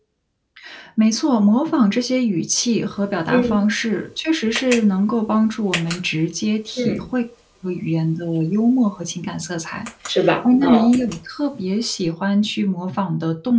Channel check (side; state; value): both; identical; correlation 1.00